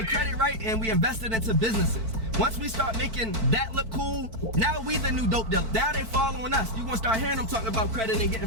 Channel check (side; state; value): left; late; 4.5 ms